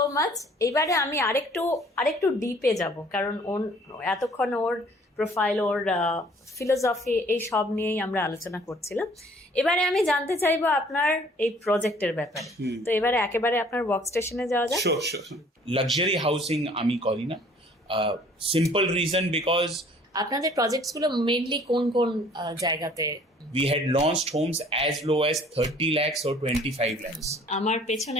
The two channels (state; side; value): normal; both; correlation 0.55